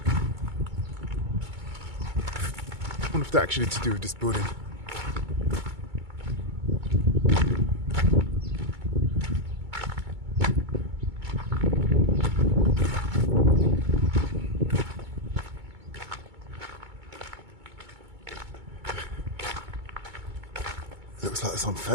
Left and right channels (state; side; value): late; left; 2.2 ms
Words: I wonder if they're actually to do with this building. Looks like some